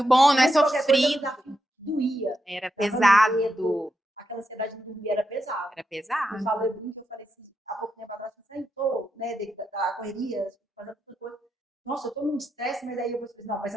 bom, não é sofrido. Desafio doía. Era pesado. Aquela ansiedade de dormir era pesado. Era pesado. Eu falei assim, há pouco tempo atrás, você entrou, né, da correria, fazendo outra coisa. Nossa, eu tô num estresse, mas aí eu vou dizer, não, mas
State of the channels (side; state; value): both; normal; correlation 0.85